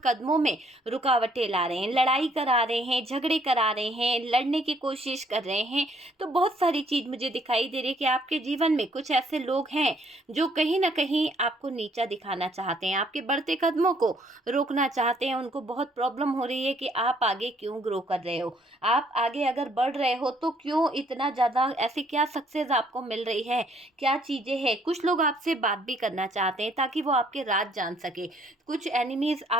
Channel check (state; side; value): normal; both; correlation 0.65